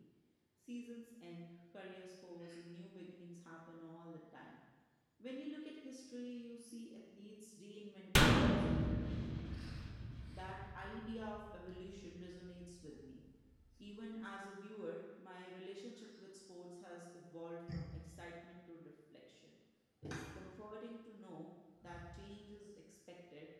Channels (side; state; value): both; identical; correlation 1.00